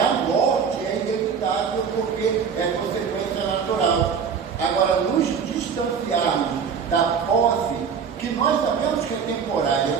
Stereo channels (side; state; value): left; quieter; 6.5 dB